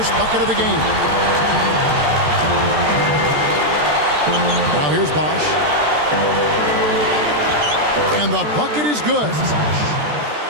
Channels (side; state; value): left; late; 13 ms